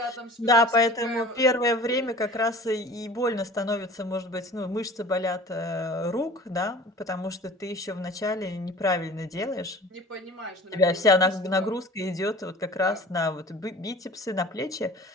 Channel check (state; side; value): normal; both; correlation 0.43